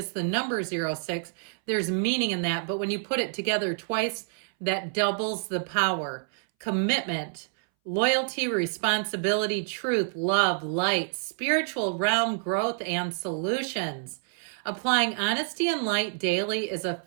the number 06, there's meaning in that. But when you put it together twice, that doubles the power. Commitment, loyalty, responsibility, truth, love, light, spiritual realm, growth, and solutions. Applying honesty and light daily is a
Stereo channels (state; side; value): silent; left; 60 dB below the other